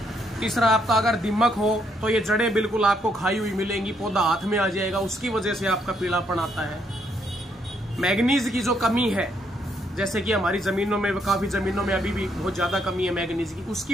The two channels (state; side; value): normal; both; correlation 0.73